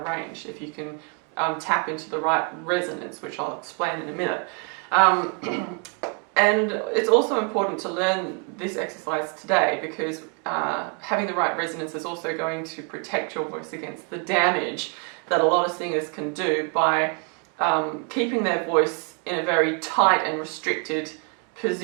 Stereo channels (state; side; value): quieter; left; 37.1 dB